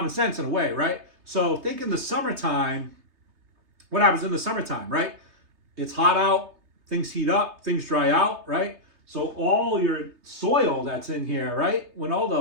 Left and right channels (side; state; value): left; late; 3.3 ms